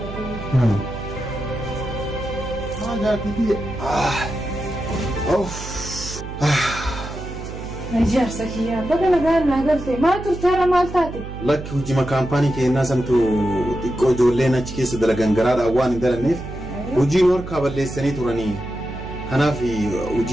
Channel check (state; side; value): noise; right; hum, 10 dB below the sound